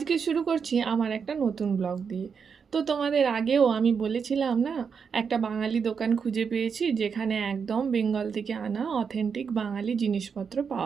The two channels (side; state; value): left; quieter; 6.2 dB